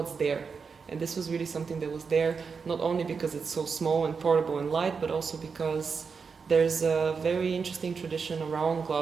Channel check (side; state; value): left; quieter; 5.4 dB